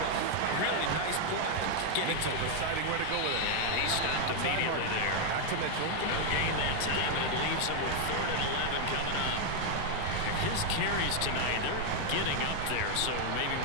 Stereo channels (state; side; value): different; both; correlation 0.00